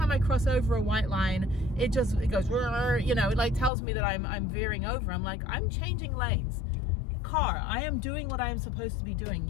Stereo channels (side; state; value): right; drops out; at 3.7 s